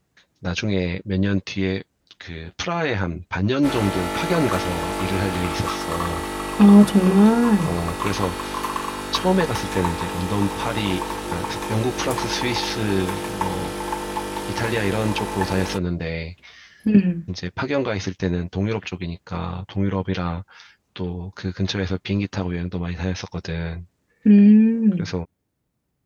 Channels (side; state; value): both; identical; correlation 1.00